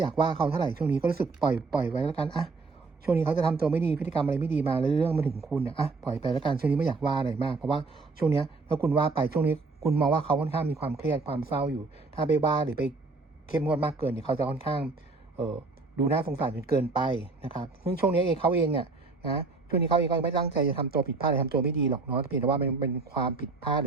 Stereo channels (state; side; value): quieter; left; 3.9 dB